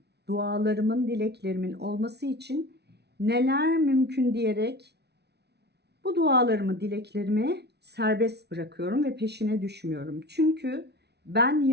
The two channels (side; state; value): left; late; 0.49 ms